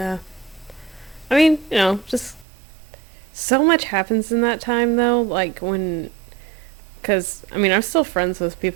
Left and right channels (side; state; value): left; drops out; at 2.5 s